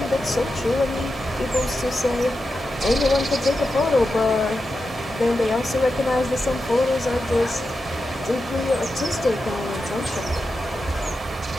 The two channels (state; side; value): normal; both; correlation 0.89